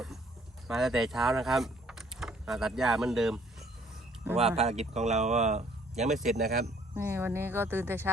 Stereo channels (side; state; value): both; normal; correlation 0.61